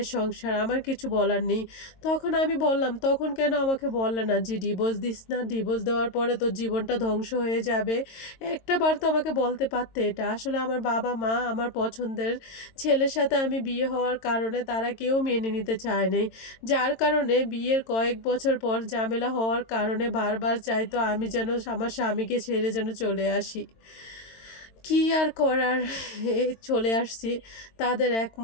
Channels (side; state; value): right; late; 22 ms